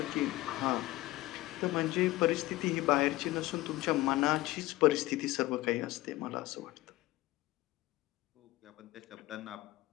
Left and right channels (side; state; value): right; quieter; 18.2 dB